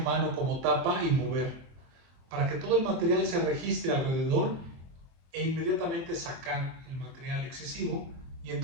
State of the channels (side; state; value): left; late; 24 ms